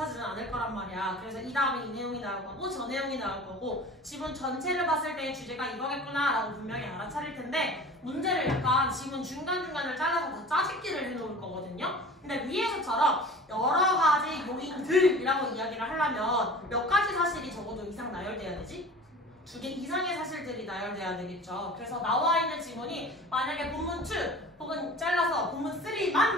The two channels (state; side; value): normal; both; correlation 0.40